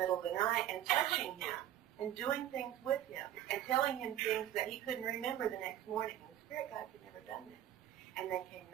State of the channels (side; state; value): left; quieter; 12.0 dB